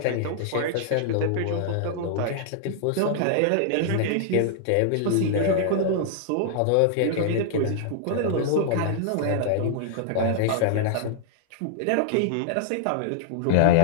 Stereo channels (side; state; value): both; different; correlation -0.01